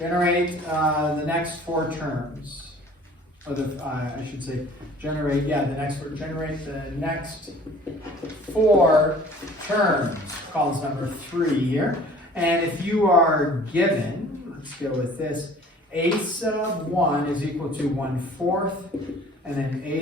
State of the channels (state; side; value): normal; both; correlation 0.49